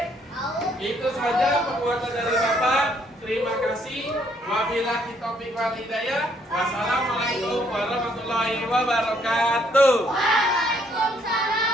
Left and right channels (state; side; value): normal; both; correlation 0.68